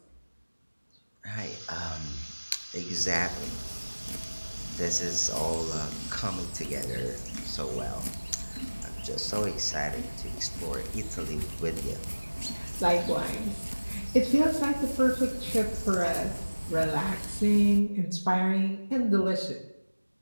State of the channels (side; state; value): both; inverted; correlation -1.00